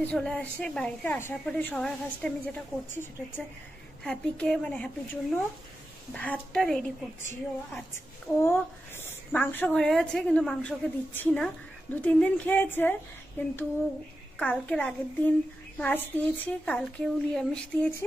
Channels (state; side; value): normal; both; correlation 0.90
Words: চলে আসে, বাড়িতে আসার পরে সবার ফার্স্টে আমি যেটা করছি সেটা হচ্ছে হ্যাপিকে, মানে হ্যাপির জন্য ভাতটা রেডি করছি। ও মাংস ঘরে আছে, কিন্তু মাংসকে দিচ্ছি না। 2-3 দিন খেয়েছে, কিন্তু কালকের আগের দিন মাছ দিয়েছি, কালকেও নিরামিষ দিয়েছি,